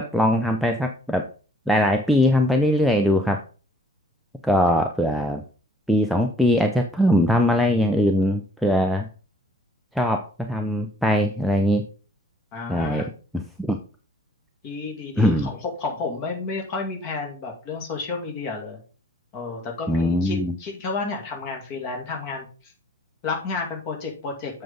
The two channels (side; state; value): both; normal; correlation 0.62